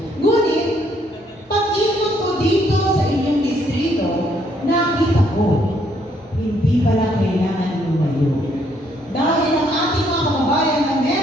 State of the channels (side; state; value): both; normal; correlation 0.69